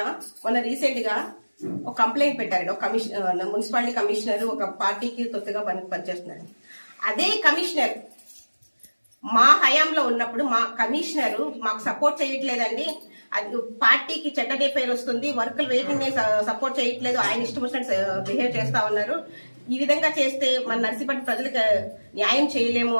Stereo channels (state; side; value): inverted; both; correlation -1.00